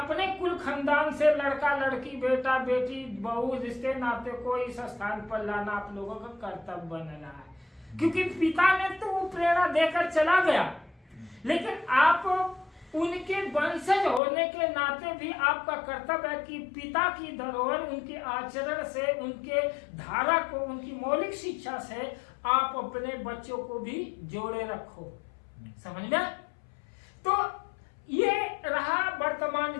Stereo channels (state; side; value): drops out; right; at 14.2 s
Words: कुल खानदान से लड़का लड़की, बेटा बेटी, बहू, रिश्ते नाते को इस स्थान पर लाना आप लोगों का कर्तव्य बन रहा है। क्योंकि पिता ने तो वो प्रेरणा देकर चला गया, लेकिन आप उनके वंशज होने के नाते भी आपका कर्तव्य है कि पिता की धरोहर, उनके आचरण से, उनके धारा को, उनकी मौलिक शिक्षा से आप अपने बच्चों को भी जोड़े रखो। समझ में? तो ये रहा वर्तमान